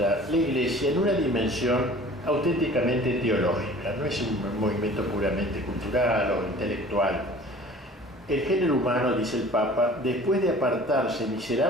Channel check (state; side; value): normal; both; correlation 0.46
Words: la Iglesia en una dimensión auténticamente teológica, no es un movimiento puramente cultural o intelectual. El género humano, dice el Papa, después de apartarse